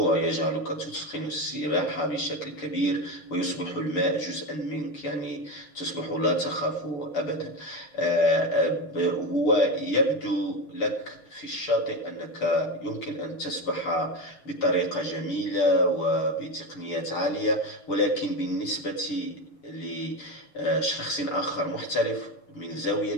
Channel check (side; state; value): right; late; 6.7 ms